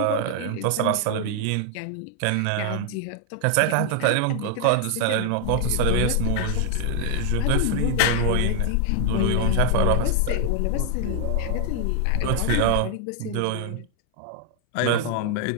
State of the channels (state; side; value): different; both; correlation 0.00